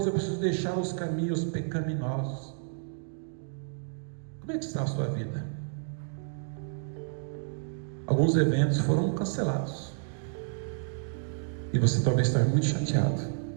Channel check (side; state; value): left; silent; digital silence